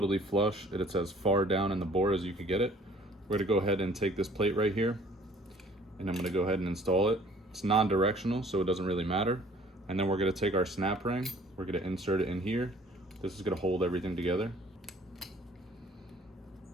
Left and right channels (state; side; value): normal; both; correlation 0.55